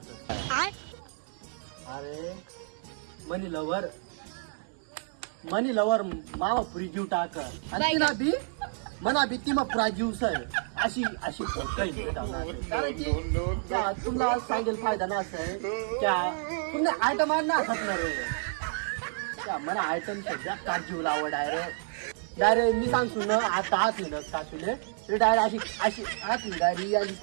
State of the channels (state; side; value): silent; left; 58 dB below the other